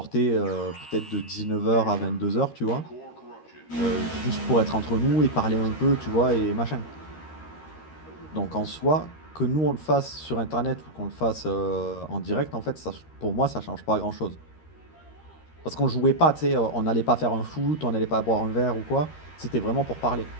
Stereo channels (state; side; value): late; right; 13 ms